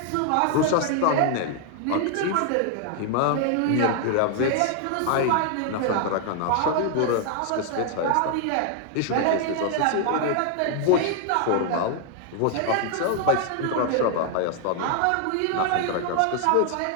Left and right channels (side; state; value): both; different; correlation 0.00